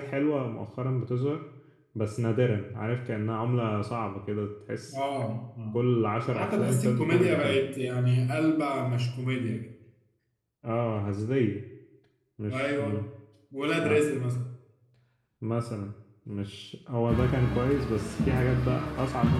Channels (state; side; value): identical; both; correlation 1.00